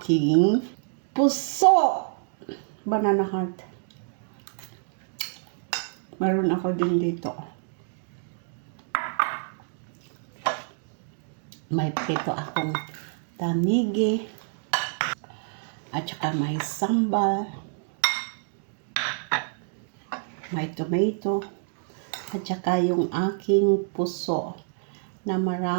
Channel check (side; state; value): left; silent; digital silence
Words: puso. Banana heart. Meron ako din dito. May prito akong tanigi. At saka may sambal. May tomato. At saka yung aking puso na